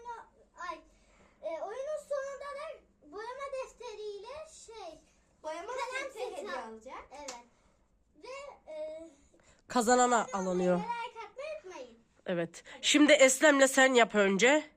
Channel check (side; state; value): both; identical; correlation 1.00